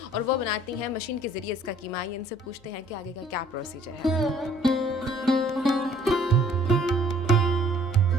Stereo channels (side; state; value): left; noise; hum, 29 dB below the sound